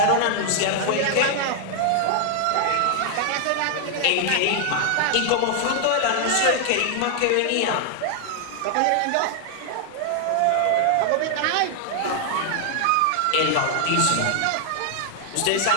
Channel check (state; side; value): different; both; correlation 0.00